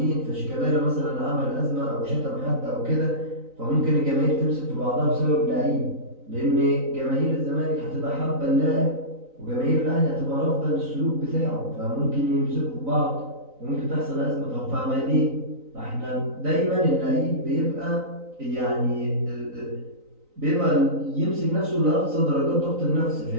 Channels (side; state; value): left; late; 3.9 ms